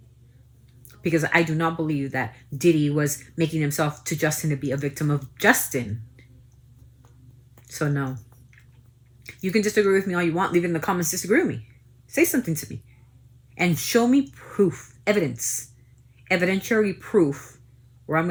Because I do not believe that Diddy was making himself to Justin to be a victim of Justin. So no. You can disagree with me all you want. Leave it in the comments. Disagree with me. Say something to me. And show me proof, evidence, evidentiary proof where I'm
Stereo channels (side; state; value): both; identical; correlation 1.00